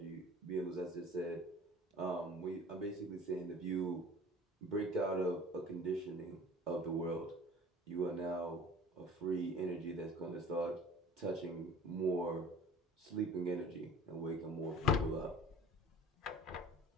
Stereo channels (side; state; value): both; normal; correlation 0.45